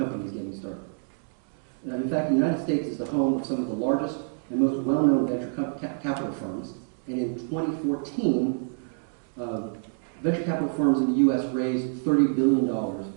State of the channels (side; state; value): left; silent; digital silence